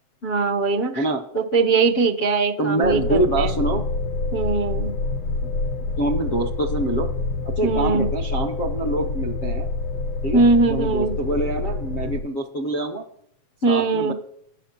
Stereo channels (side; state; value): right; late; 7.7 ms